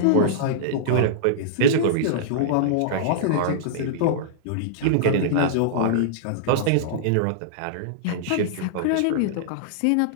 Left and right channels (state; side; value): different; both; correlation -0.02